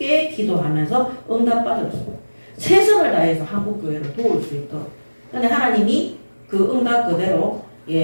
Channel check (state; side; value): inverted; both; correlation -1.00